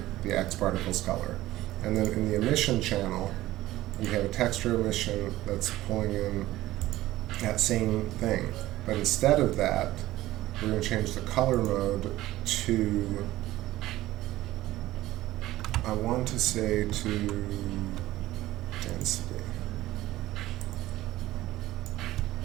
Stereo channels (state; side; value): quieter; left; 16.1 dB